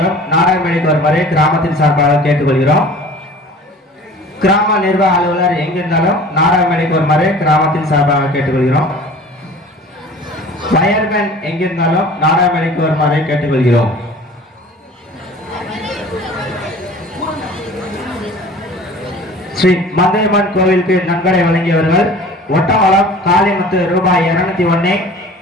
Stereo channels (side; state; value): both; normal; correlation 0.44